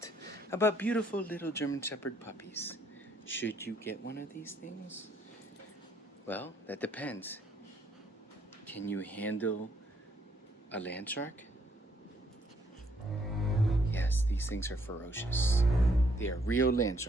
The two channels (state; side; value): normal; both; correlation 0.69